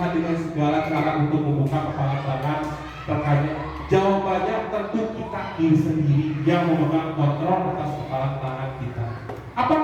dengan segala cara untuk membuka kepala tangan? Jawabannya tentu kita diri sendiri yang memegang kontrol atas kepala tangan kita.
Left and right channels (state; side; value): identical; both; correlation 1.00